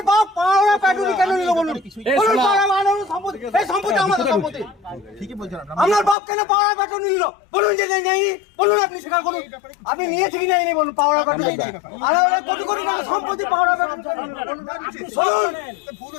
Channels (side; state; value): right; drops out; at 6.2 s